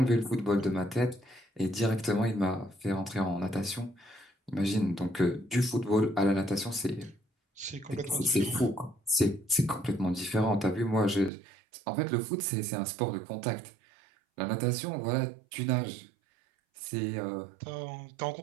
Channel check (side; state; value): left; drops out; at 11.3 s